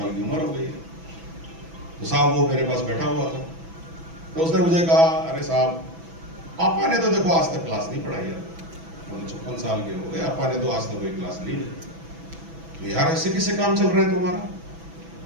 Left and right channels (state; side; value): late; left; 6.1 ms